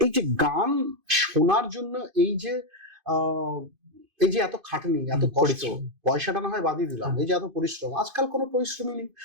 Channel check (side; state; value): left; late; 2.5 ms